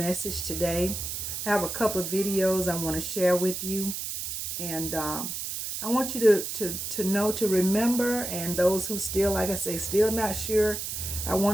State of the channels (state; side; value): noise; right; hiss, 5 dB below the sound